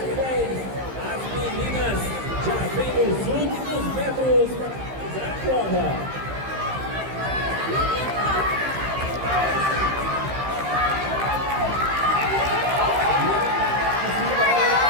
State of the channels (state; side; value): late; left; 15 ms